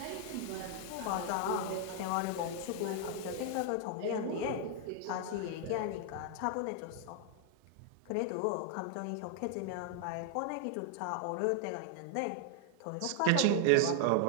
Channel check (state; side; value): different; both; correlation 0.00